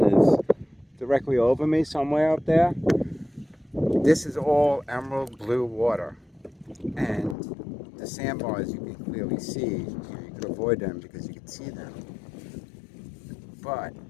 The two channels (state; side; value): drops out; right; at 7.4 s